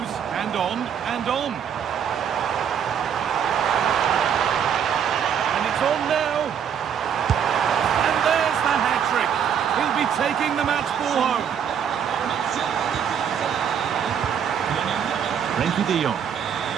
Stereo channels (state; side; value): quieter; left; 8.1 dB